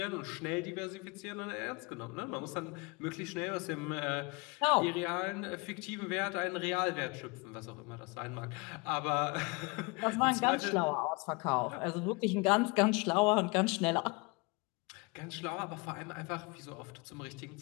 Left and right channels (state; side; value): quieter; right; 27.9 dB